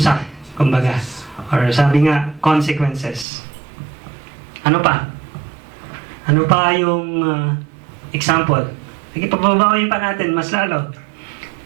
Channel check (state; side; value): drops out; left; at 3.2 s